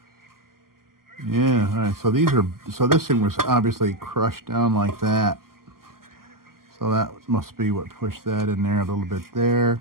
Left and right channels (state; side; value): late; left; 0.92 ms